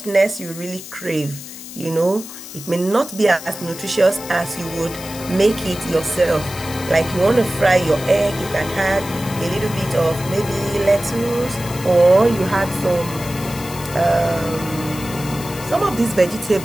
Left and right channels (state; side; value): noise; left; hiss, 13 dB below the sound